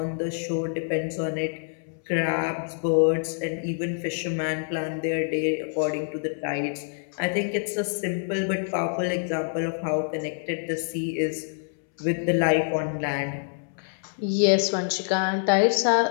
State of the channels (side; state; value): right; silent; 61 dB below the other